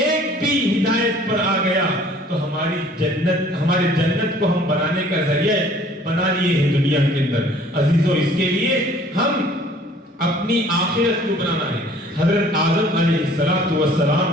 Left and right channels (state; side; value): normal; both; correlation 0.54